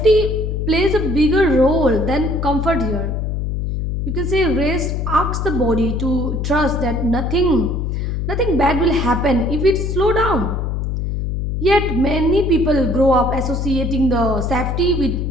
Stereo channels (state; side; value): noise; left; hum, 1 dB below the sound